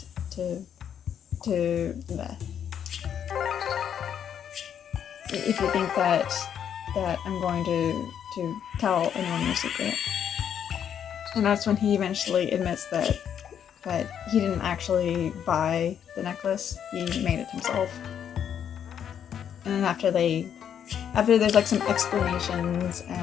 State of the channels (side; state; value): right; quieter; 8.8 dB